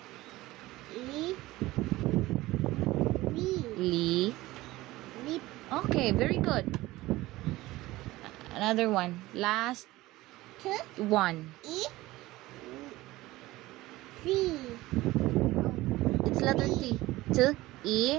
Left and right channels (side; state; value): left; quieter; 18.2 dB